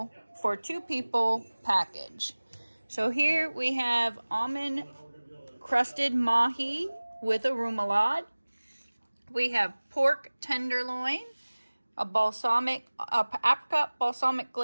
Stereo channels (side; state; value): both; inverted; correlation -1.00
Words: for 2 people package. So here we have almond crusted mahi with a remoulade. We have pork tenderloin, a apricot balsamic